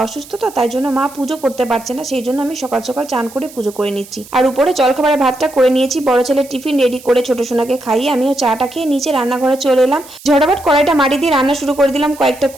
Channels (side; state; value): right; noise; hiss, 20 dB below the sound